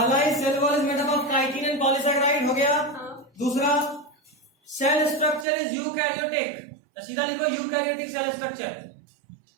ही cell wall is made up of chitin and polysaccharide हो गया। दूसरा सेल स्ट्रक्चर इज यूकैरियोटिक, तो सीधा लिखो eukaryotic cell structure.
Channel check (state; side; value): drops out; left; at 5.5 s